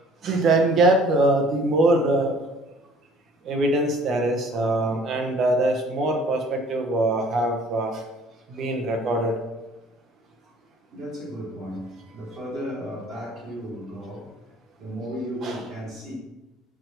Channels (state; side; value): normal; both; correlation 0.54